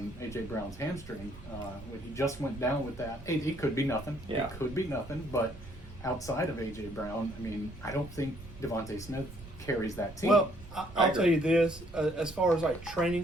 A.J. Brown's hamstring. When he just went down with that, it could be nothing. Yeah. It could be nothing, but outside of A.J. Brown, I mean, I don't think Devontae Smith carries that team. Well, I I'll agree. tell you this: as far as like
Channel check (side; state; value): right; noise; rumble, 16 dB below the sound